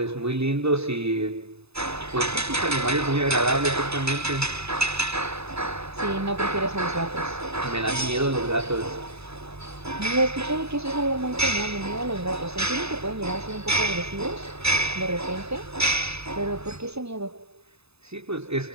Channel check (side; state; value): left; late; 0.79 ms